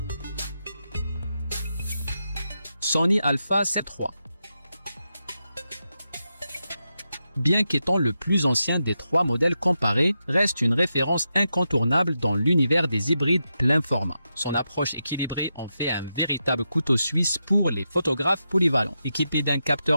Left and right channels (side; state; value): both; inverted; correlation -0.87